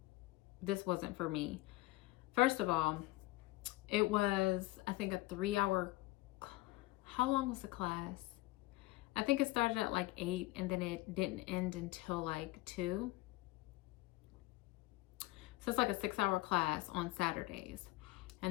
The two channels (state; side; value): quieter; right; 20.2 dB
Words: this wasn't for me. First of all, it was, I think, a 3-hour, how long was the class? I think it started at like 8 and then it didn't end until like 2. So it's like a 6-hour class on Saturdays,